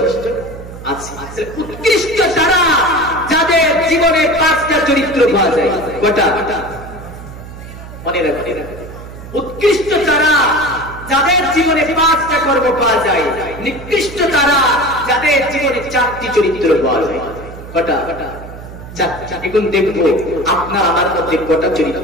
আছে। উৎকৃষ্ট তারা যাদের জীবনে 5টা চরিত্র পাওয়া যায়। কটা? মনে রাখবেন, উৎকৃষ্ট তারা যাদের জীবনে 5টা কর্ম পাওয়া যায়, নিকৃষ্ট তারা যাদের জীবনে 4টি চরিত্র পাওয়া যায়। কটা? 4টা। এখন দেখবো আপনার আমার মধ্যে কটা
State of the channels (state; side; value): noise; right; hum, 14 dB below the sound